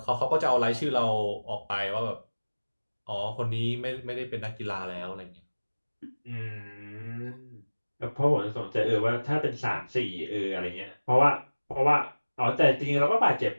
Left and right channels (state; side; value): inverted; both; correlation -1.00